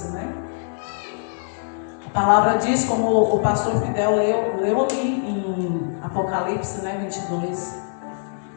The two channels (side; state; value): right; silent; digital silence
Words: A palavra diz, como o pastor Fidel leu ali em Apocalipse 22,